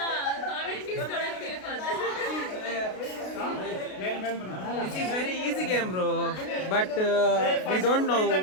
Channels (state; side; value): late; right; 32 ms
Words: ಕಾಮೆಂಟ್ ಇಸ್ಕೊಳಕ್ಕೆ This is very easy game, bro. But we don't know.